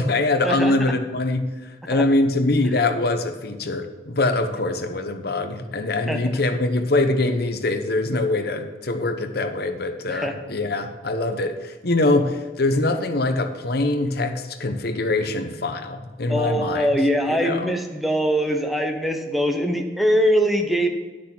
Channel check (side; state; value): both; normal; correlation 0.51